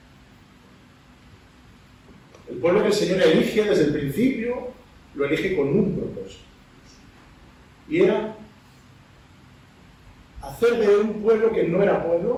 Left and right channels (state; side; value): identical; both; correlation 1.00